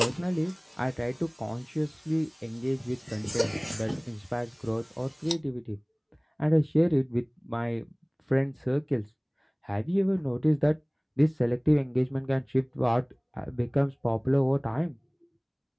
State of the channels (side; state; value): both; identical; correlation 1.00